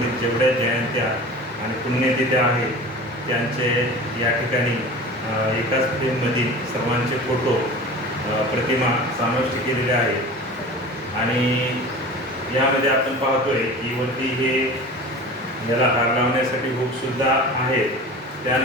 जेवढ्या जयंत्या आणि पुण्यतिथ्या आहेत त्यांचे या ठिकाणी एकाच फ्रेममधील सर्वांचे फोटो प्रतिमा समाविष्ट केलेल्या आहेत. आणि यामध्ये आपण पाहतोय की वरती हे याला हार लावण्यासाठी हुकसुद्धा आहेत.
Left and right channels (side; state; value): both; normal; correlation 0.36